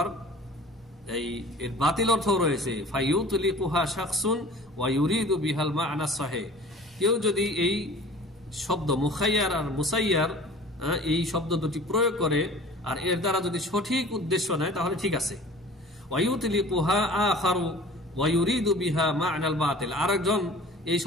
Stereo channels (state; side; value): normal; both; correlation 0.44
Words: এই এর বাতিল অর্থ রয়েছে। ফায়ুতলিকুহা শাখসুন ওয়া ইউরিদু বিহাল মা'না সাহিহ, কেউ যদি এই শব্দ মুখাইয়ার আর মুসাইয়ার এই শব্দ দুটি প্রয়োগ করে আর এর দ্বারা যদি সঠিক উদ্দেশ্য নেয় তাহলে ঠিক আছে। ওয়ায়ুতলিকুহা আখারু ওয়া ইউরিদু বিহা মা'নাল বাতিল, আরেকজন এই